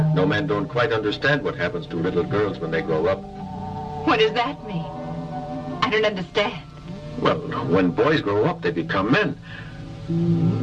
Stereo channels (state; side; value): identical; both; correlation 1.00